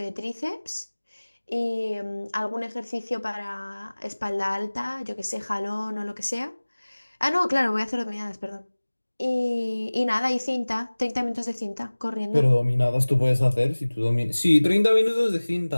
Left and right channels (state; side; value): inverted; both; correlation -1.00